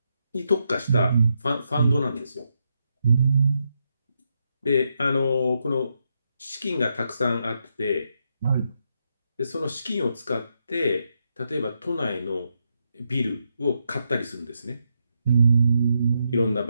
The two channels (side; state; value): both; inverted; correlation -0.81